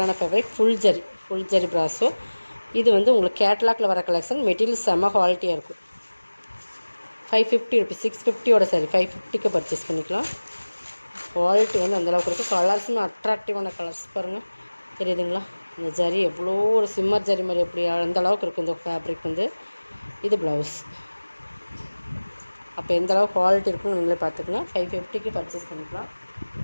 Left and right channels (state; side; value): inverted; both; correlation -1.00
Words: ஃபேப்ரிக். ஃபுல் ஜரி பிராஸோ. இது வந்து உங்களுக்கு கேட்லாக்ல வர கலெக்ஷன். மெட்டீரியல் செம்ம குவாலிட்டியாக இருக்கும். 550 ருபீஸ். 650 சாரி. 550க்கு பர்ச்சேஸ் பண்ணிக்கலாம். குவாலிட்டி வந்து அந்தளவுக்கு இருக்குது. கலர்ஸுமே அட்ராக்டிவான கலர்ஸ் பாருங்கள், தெரியுதுங்களா? இந்த ஜரி எவ்வளோ ஒரு சிம்மர் ஜரி மாதிரி எப்படி அந்த அளவுக்கு இருக்குது இந்த ஃபேப்ரிக் வந்து. இது ப்ளவுஸ். அப்போ எந்த அளவுக்கு குவாலிட்டி இருக்குன்னு நீங்களே பார்த்துக்கங்க. 550க்கு பர்ச்சேஸ் பண்ணிக்கலாம்.